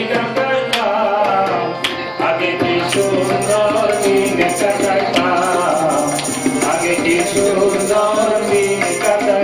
কাটাইতাম আগে কি সুন্দর দিন কাটাইতাম আগে কি সুন্দর দিন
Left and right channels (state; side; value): identical; both; correlation 1.00